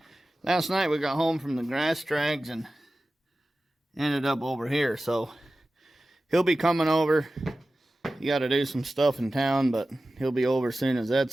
Last night we got home from the grass drags and ended up over here. So he'll be coming over. You got to do some stuff in town, but he'll be over as soon as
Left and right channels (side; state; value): both; normal; correlation 0.95